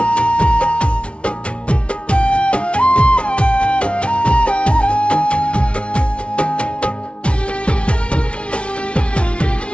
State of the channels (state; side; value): late; right; 0.060 ms